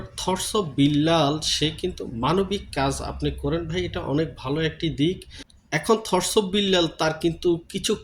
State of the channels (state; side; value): identical; both; correlation 1.00